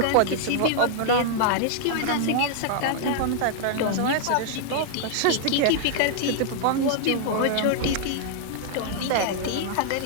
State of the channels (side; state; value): both; different; correlation -0.01